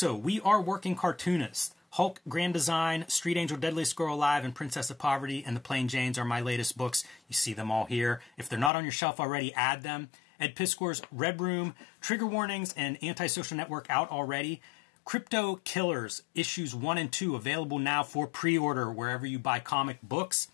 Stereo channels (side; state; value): right; drops out; at 8.7 s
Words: we are working Cartoonist. Hulk, Grand Design, Street Angel, Deadliest Girl Alive, and Princess of Poverty, and The Plain Janes are my latest books. You see them all here. If they're not on your shelf already, add them. Ed Piskor's Red Room, Trigger Warnings, and Antisocial Network out already. Crypto Killers, issues 1 and 2, available now for pre-order wherever you buy comic books.